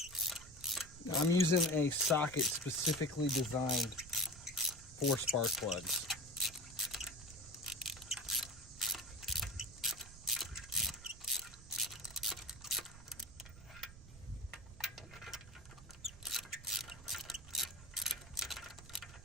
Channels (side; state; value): right; noise; rumble, 17 dB below the sound